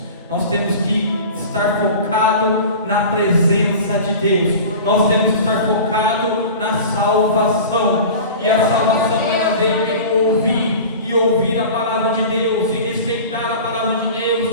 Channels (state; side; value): inverted; both; correlation -0.37